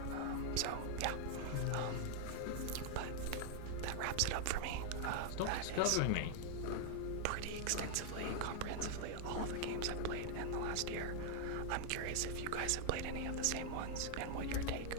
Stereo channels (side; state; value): both; different; correlation 0.00